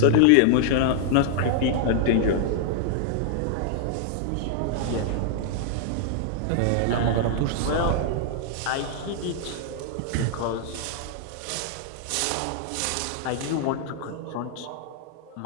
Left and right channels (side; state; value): both; different; correlation -0.01